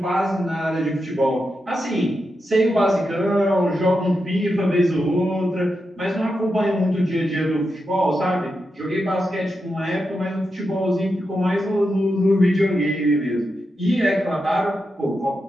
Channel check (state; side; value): normal; both; correlation 0.87